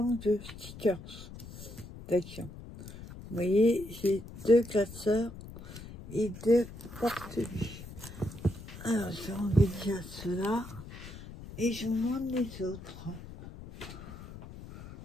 stickers d'action. Vous voyez, j'ai 2 classeurs et 2 porte-buts. Alors, je vais enlever déjà ceux-là et je vous montre les autres.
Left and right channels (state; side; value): noise; left; rumble, 14 dB below the sound